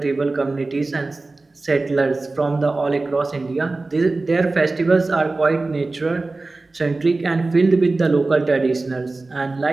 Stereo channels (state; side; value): quieter; left; 3.4 dB